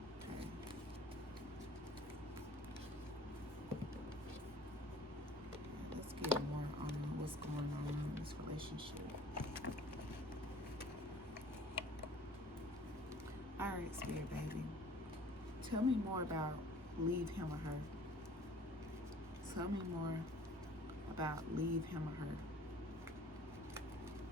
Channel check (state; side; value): normal; both; correlation 0.50